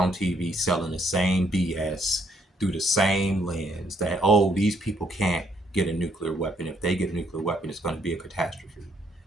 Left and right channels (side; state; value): both; normal; correlation 0.71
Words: TV selling the same BS through the same lens that, oh, these people can't get a nuclear weapon. If they get a nuclear weapon, it's going to be a catastrophe.